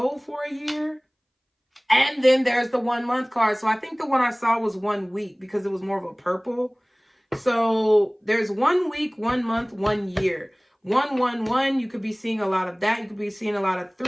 for a year. And then there's the 1 month card. So I think the one I saw was 1 week because it was more of a purple. So there's 1 week, 1 month, 1 year. 111, you could be seeing a lot of that. You could be seeing a lot of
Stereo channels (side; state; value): both; identical; correlation 1.00